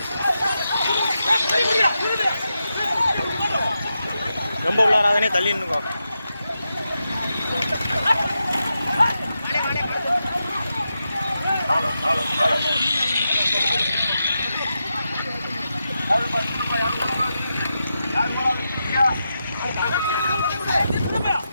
ரொம்ப உள்ளாராதனே தள்ளி நின்னுக்கோ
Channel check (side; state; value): both; inverted; correlation -0.88